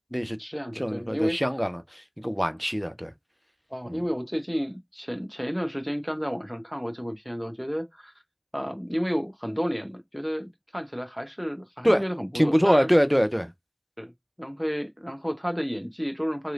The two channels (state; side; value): identical; both; correlation 1.00